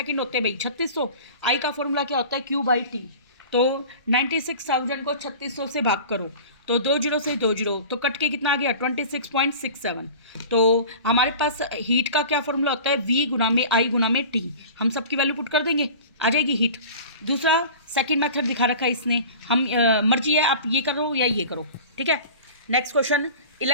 होते हैं भाई? 3600। आई का फॉर्मूला क्या होता है? Q/T। तो 96,000 को 3600 से भाग करो तो 2 जीरो से 2 जीरो, तो कट के कितना आ गया? 26.67। तो हमारे पास हीट का क्या फॉर्मूला होता है? V/I/T। हम सबकी वैल्यू पुट कर देंगे, आ जाएगी हीट। दूसरा सेकंड मेथड दिखा रखा है इसने, हम मर्जी है आप ये करो या ये करो। ठीक है, नेक्स्ट क्वेश्चन,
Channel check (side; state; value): both; inverted; correlation -0.39